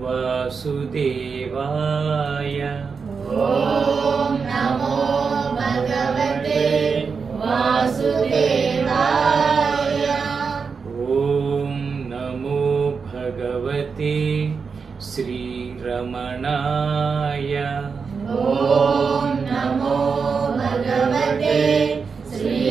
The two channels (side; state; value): left; quieter; 5.4 dB